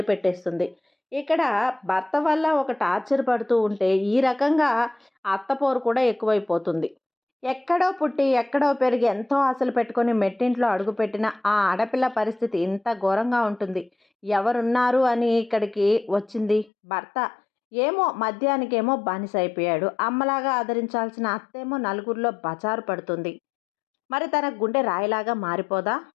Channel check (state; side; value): drops out; right; at 16.7 s